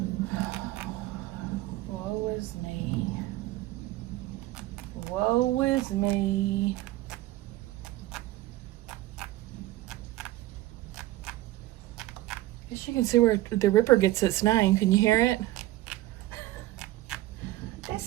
Woe is me. Woe is me. Guess you can see where the Ripper gets its name. Can you hear it?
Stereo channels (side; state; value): left; quieter; 16.4 dB